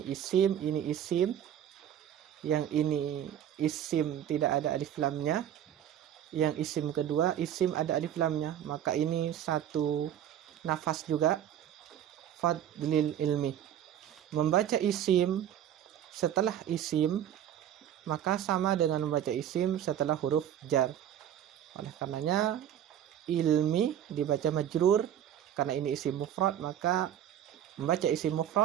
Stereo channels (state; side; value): quieter; left; 10.4 dB